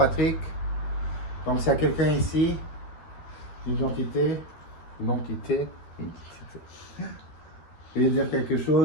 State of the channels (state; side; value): late; right; 13 ms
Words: Donc s'il y a quelqu'un ici, identité. Veuillez dire quelque